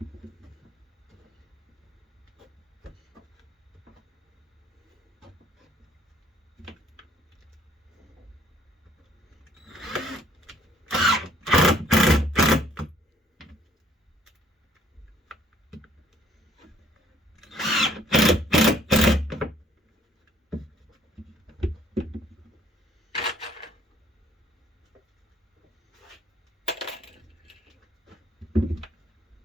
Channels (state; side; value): normal; both; correlation 0.62